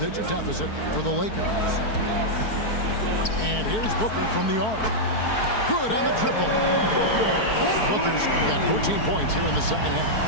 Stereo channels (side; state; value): right; late; 4.6 ms